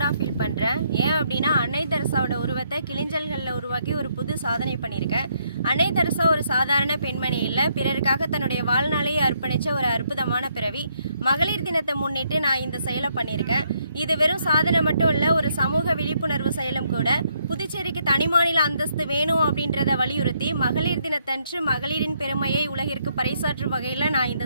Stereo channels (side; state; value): both; inverted; correlation -0.73